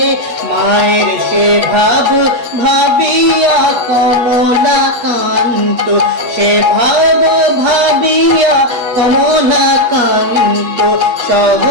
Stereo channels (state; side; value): late; left; 8.3 ms